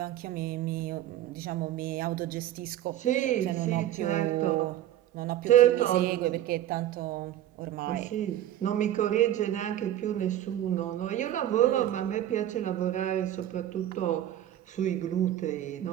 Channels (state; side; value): quieter; left; 12.4 dB